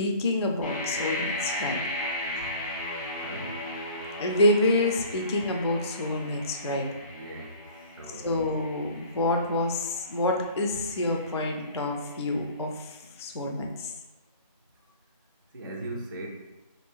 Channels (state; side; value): inverted; both; correlation -0.46